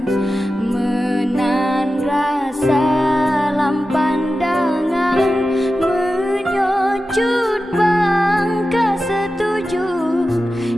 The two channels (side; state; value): both; normal; correlation 0.93